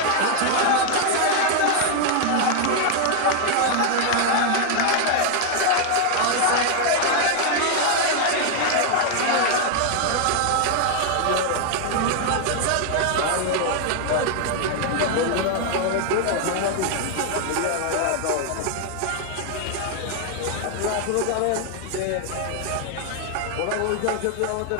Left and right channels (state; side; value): different; both; correlation 0.00